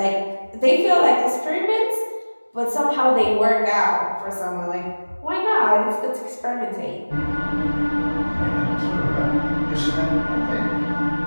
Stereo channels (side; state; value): both; inverted; correlation -1.00